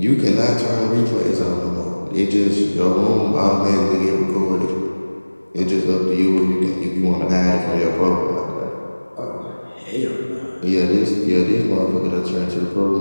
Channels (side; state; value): both; inverted; correlation -1.00